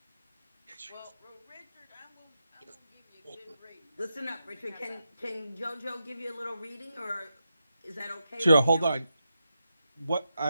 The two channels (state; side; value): inverted; both; correlation -0.87